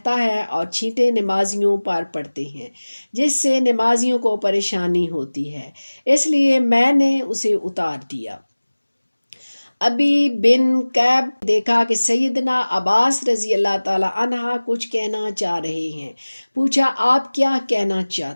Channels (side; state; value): both; inverted; correlation -1.00